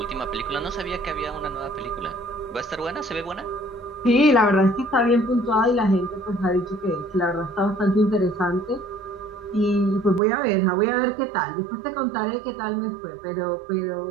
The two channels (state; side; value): drops out; left; at 10.2 s